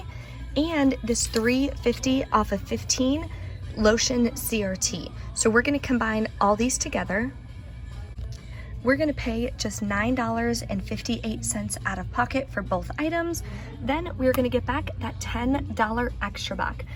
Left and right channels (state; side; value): identical; both; correlation 1.00